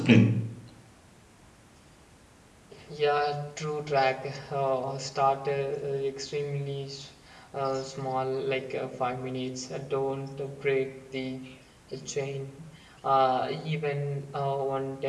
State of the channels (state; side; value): identical; both; correlation 1.00